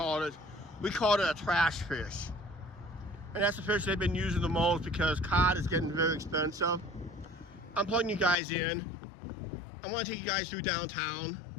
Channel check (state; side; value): drops out; right; at 8.3 s